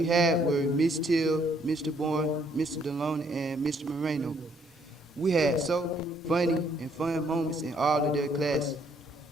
had were Miss Till, Mr. Bourne, Mr. Deloney, and Mr. Moreno. We had so funny and fun moments in all of their classes.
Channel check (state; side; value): normal; both; correlation 0.67